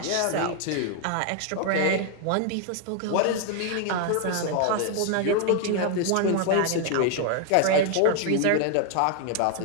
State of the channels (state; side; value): different; both; correlation 0.00